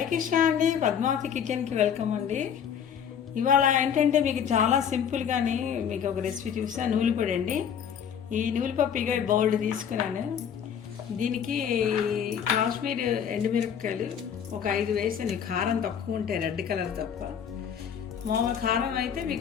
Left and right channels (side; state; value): right; quieter; 8.1 dB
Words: కృష్ణ అండి, పద్మావతి కిచెన్కి వెల్కమ్ అండి. ఇవాళ ఏంటంటే మీకు చాలా సింపుల్గాని మీకు ఒక రెసిపీ చూసా. నూలుపొడి అండి. ఈ నూలుపప్పు ఇక బౌల్ తీసుకున్నాను. దీనికి కాశ్మీర్ ఎండుమిరపకాయలు ఒక 5 వేసాను. కారం తక్కువ ఉంటాయి, రెడ్ కలర్ తప్ప. మామూలు కారం అయితే